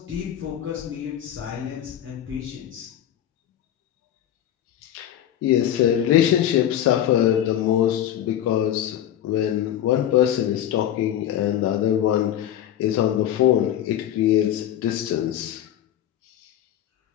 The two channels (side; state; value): right; quieter; 11.2 dB